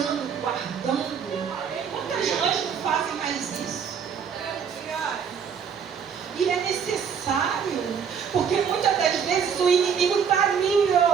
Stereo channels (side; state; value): left; quieter; 7.1 dB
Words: guardando. Quantas mães não fazem mais isso? E é necessário, porque muitas das vezes o inimigo está ali,